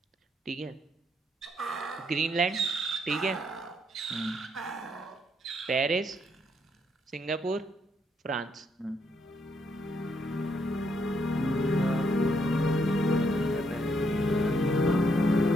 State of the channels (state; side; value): normal; both; correlation 0.74